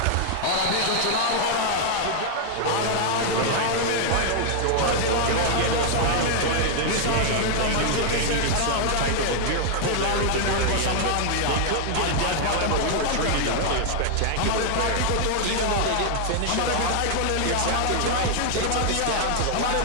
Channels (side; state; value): both; different; correlation 0.00